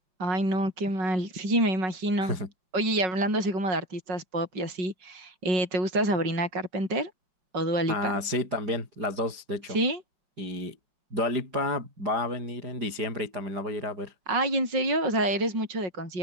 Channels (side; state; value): left; late; 5.0 ms